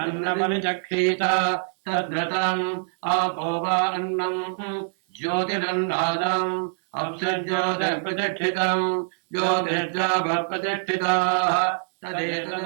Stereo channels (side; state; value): left; silent; digital silence